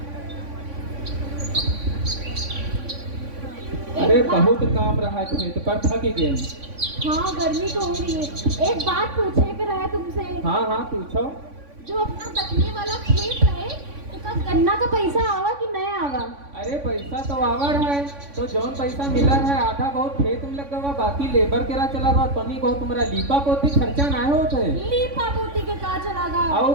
अरे बहुत काम रहा है खेत पर, थक गए। हाँ गर्मी तो हो रही है। एक बात पूछे कर है तुमसे। हाँ हाँ पूछो। जो अपना दखने वाला खेत है उसका गन्ना का पैसा आवा कि नहीं आवा? अरे पैसा तो आवर है, तो जौन पैसा मिला है आधा बहुत खेत में लगा हुआ, बाकी लेबर के रहा चला गया। तनी बहुत तुम्हारा लीपा पोती खर्चा ना होता है। लीपा पोती के का चला गा? आओ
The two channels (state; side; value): late; left; 3.5 ms